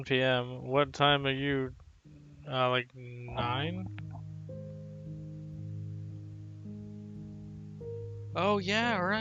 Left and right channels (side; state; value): both; identical; correlation 1.00